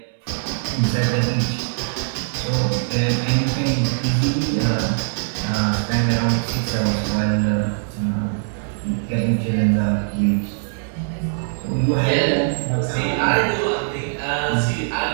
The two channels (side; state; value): left; silent; 65 dB below the other